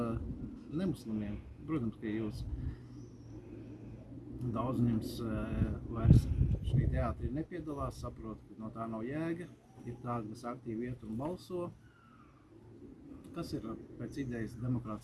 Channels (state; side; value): identical; both; correlation 1.00